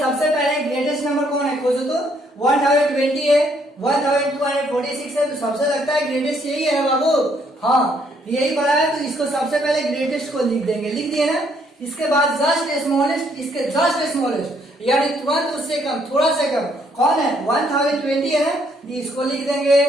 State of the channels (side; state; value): both; normal; correlation 0.69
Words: पहले ग्रेटेस्ट नंबर कौन है, खोजो तो। 1020 है, 1246 है, तो सबसे लगता है ग्रेटेस्ट यही है बाबू। हाँ, यही पढ़ा है, तो इसको सबसे पहले ग्रेटेस्ट को लिख देंगे, लिख दिए ना। इसके बाद जस्ट स्मॉलेस्ट, इसके जस्ट स्मॉलेस्ट यानी तुरंत उससे कम, थोड़ा सा कम कौन है, 1020 है ना, इसको लिख देंगे।